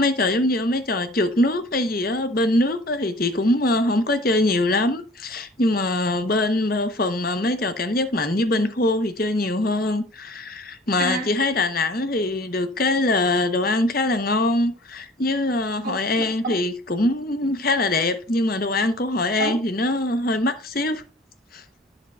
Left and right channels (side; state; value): both; normal; correlation 0.47